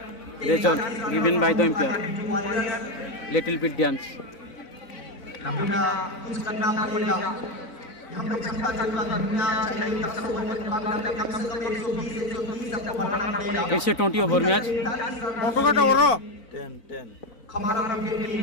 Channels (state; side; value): late; right; 4.0 ms